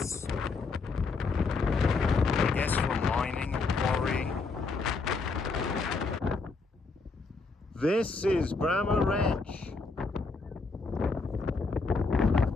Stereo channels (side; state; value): right; quieter; 4.1 dB